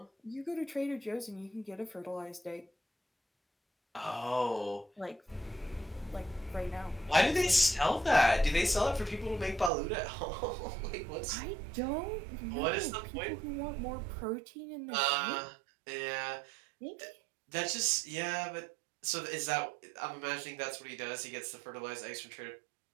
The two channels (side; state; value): left; drops out; at 9.7 s